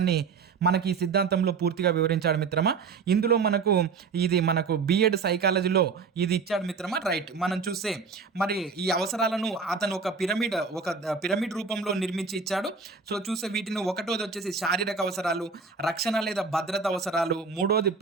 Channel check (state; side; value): quieter; left; 5.1 dB